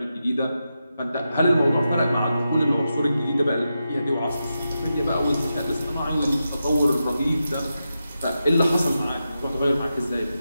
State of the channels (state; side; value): inverted; both; correlation -0.89